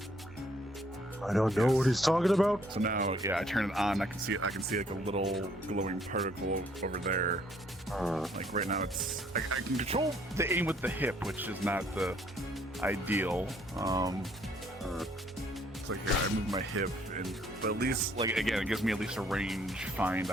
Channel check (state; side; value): normal; both; correlation 0.64